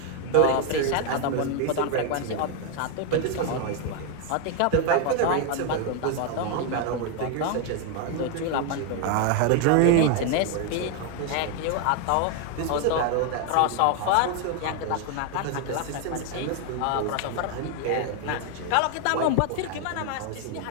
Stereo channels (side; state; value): both; different; correlation 0.01